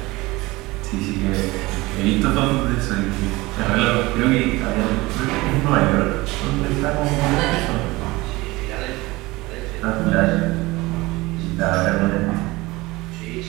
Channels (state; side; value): quieter; left; 21.2 dB